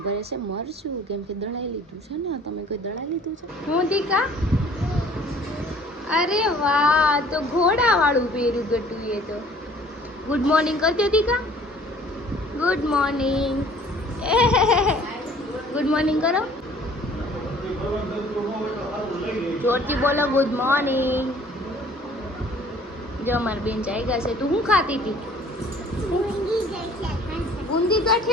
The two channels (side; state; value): both; normal; correlation 0.53